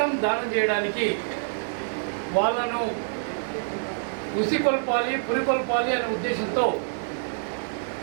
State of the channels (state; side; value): silent; left; digital silence